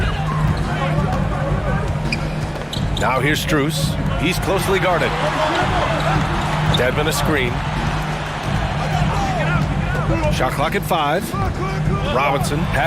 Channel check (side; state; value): both; identical; correlation 1.00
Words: Now here's Strus. He's closely guarded. Dedmon a screen. Shot clock at 5. Robinson